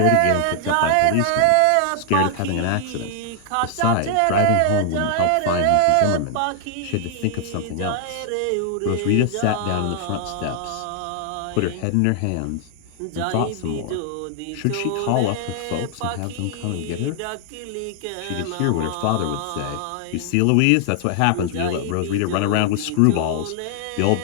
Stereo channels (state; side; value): different; both; correlation 0.00